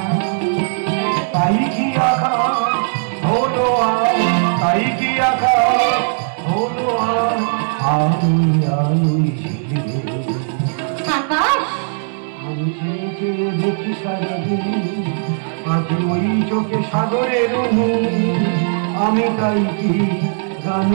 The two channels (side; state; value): left; silent; digital silence